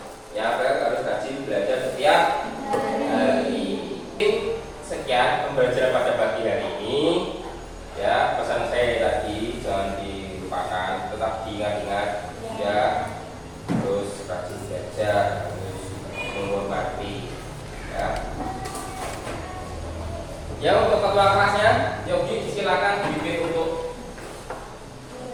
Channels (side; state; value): both; identical; correlation 1.00